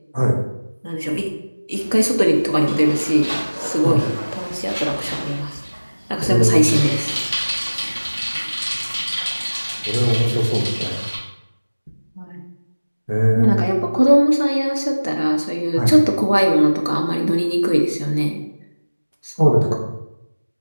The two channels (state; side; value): inverted; both; correlation -1.00